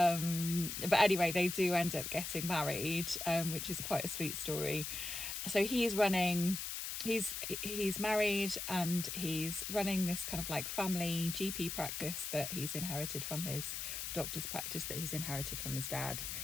anyway, they do end up getting married, which is quite a sweet story. So he's married, and he's running this kind of like family GP practice that he's inherited from his doctor's practice that he's inherited from his dad,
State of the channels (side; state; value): left; noise; hiss, 4 dB below the sound